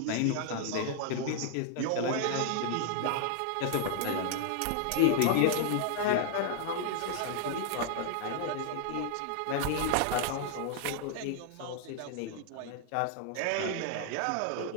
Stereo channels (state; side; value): different; both; correlation 0.00